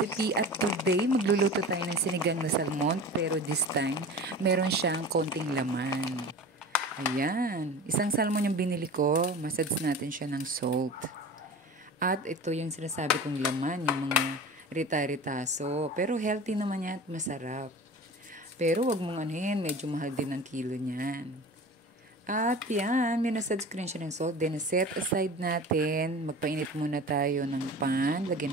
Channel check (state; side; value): normal; both; correlation 0.36